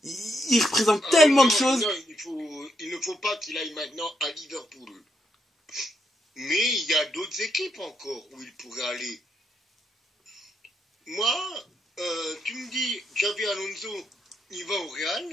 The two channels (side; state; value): both; normal; correlation 0.78